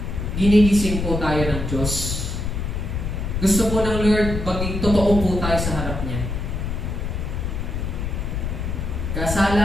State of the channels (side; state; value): left; noise; rumble, 3 dB below the sound